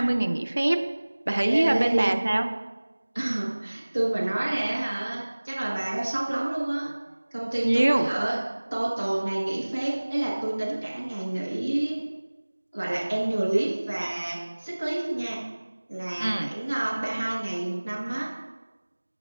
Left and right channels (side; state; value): both; inverted; correlation -1.00